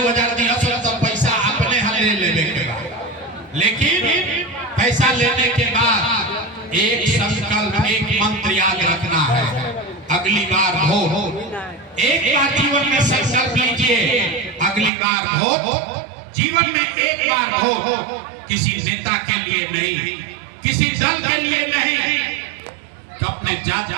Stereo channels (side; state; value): left; drops out; at 14.9 s